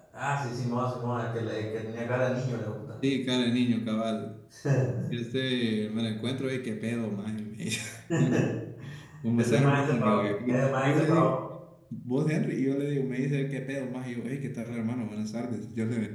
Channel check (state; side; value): identical; both; correlation 1.00